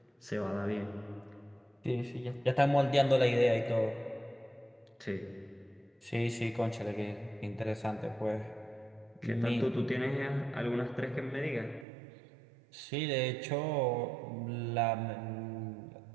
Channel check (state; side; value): drops out; left; at 11.9 s